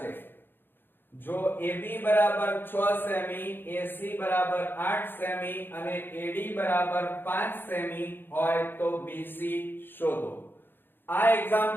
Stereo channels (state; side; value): late; right; 0.099 ms